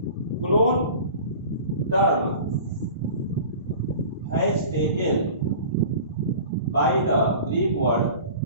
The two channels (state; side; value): inverted; both; correlation -0.40